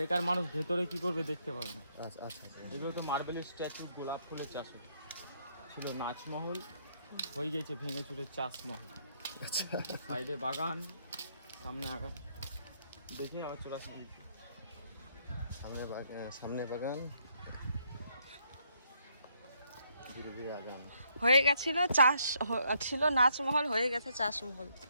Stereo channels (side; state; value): both; inverted; correlation -0.72